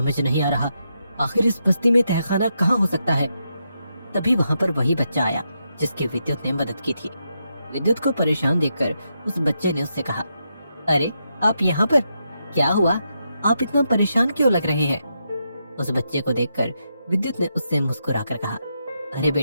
नहीं आ रहा, आखिर इस बस्ती में तहखाना कहाँ हो सकता है? तभी वहाँ पर वही बच्चा आया जिसकी विद्युत ने मदद की थी। विद्युत को परेशान देखकर उस बच्चे ने उससे कहा, अरे आप यहाँ पर? क्या हुआ? आप इतना परेशान क्यों लग रहे हैं? उस बच्चे को देखकर विद्युत ने उससे मुस्कुराकर कहा, अरे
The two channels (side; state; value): both; inverted; correlation -0.83